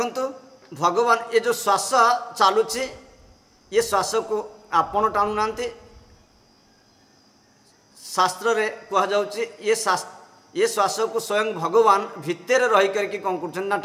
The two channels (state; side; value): identical; both; correlation 1.00